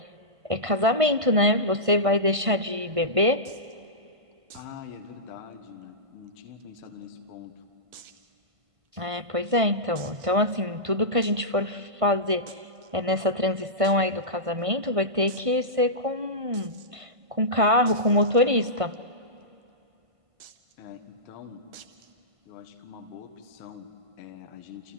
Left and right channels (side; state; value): left; late; 1.5 ms